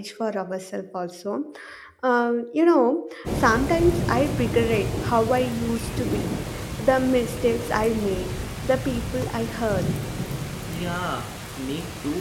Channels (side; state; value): both; identical; correlation 1.00